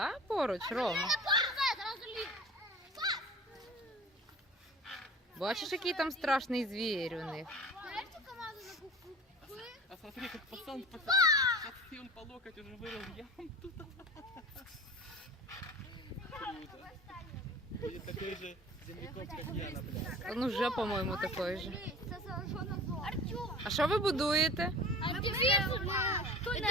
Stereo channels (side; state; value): both; normal; correlation 0.40